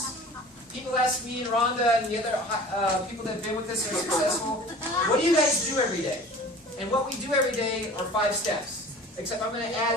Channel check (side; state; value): both; normal; correlation 0.43